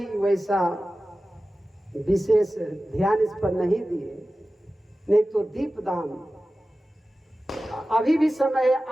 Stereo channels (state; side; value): normal; both; correlation 0.95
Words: वैसा विशेष ध्यान इस पर नहीं दिए। नहीं तो दीपदान अभी भी समय है।